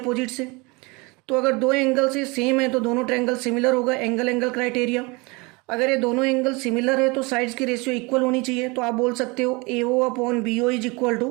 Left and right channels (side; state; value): left; quieter; 26.8 dB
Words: से। तो अगर दो एंगल से सेम है तो दोनों ट्रायंगल सिमिलर होगा, एंगल क्राइटेरिया। अगर ये दोनों एंगल सिमिलर है तो साइड्स की रेशियो इक्वल होनी चाहिए। तो आप बोल सकते हो AO/BO is equal